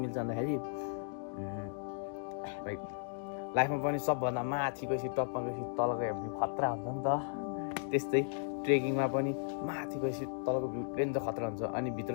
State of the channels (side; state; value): right; silent; digital silence